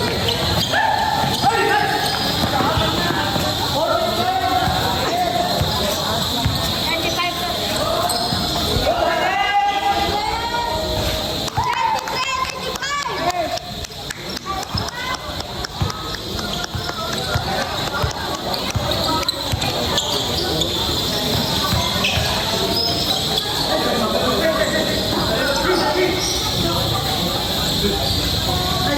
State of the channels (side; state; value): both; identical; correlation 1.00